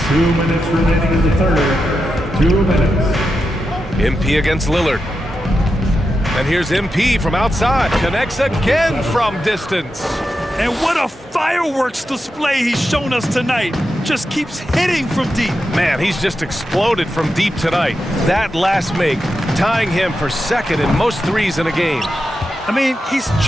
2 minutes remaining in the third. 2 minutes. MP against Lillard. And here's MP from outside. Connects again from distance. And what a fireworks display he's shown us tonight. Just keeps hitting from deep. Man, he's just exploded from deep tonight. That last make, tying him for second in most threes in a game. I mean, he's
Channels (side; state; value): both; normal; correlation 0.88